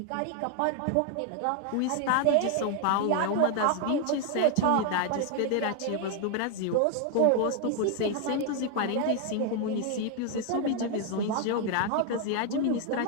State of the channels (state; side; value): different; both; correlation 0.01